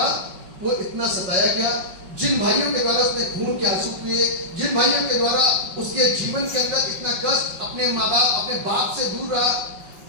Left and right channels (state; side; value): late; left; 5.4 ms